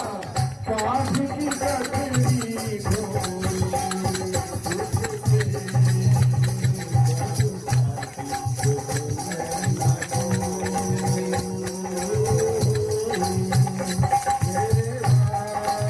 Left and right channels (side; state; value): both; identical; correlation 1.00